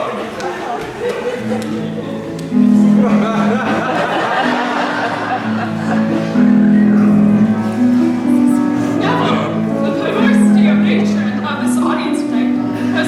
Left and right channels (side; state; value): both; identical; correlation 1.00